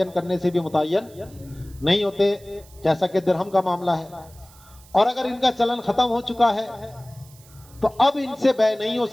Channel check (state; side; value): noise; right; hiss, 25 dB below the sound